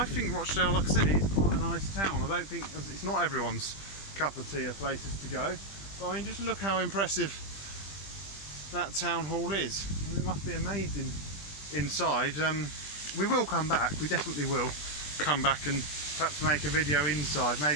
think Rochdale, like I said, is quite a nice town. I don't think it's not everyone's cup of tea of places to go, but I mean, just look how impressive that town hall is. I mean, it must be amazing inside. We will come back, we definitely will come back and perhaps make a video inside,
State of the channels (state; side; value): late; right; 20 ms